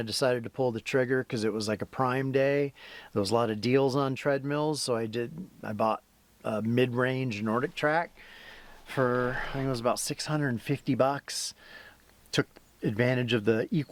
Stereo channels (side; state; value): both; identical; correlation 1.00